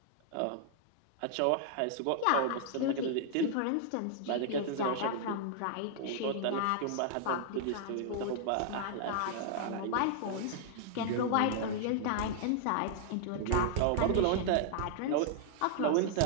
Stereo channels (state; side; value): different; both; correlation -0.01